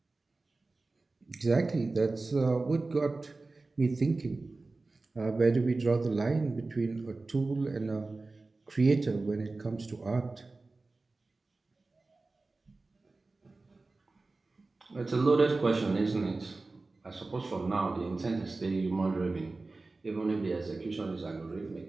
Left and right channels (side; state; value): left; quieter; 3.4 dB